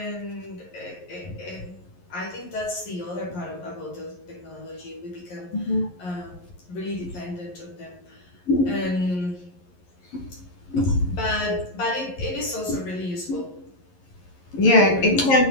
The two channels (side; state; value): right; late; 11 ms